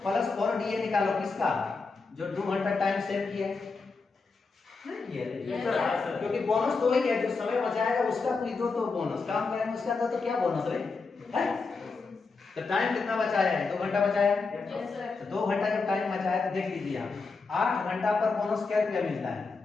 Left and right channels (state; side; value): quieter; right; 4.3 dB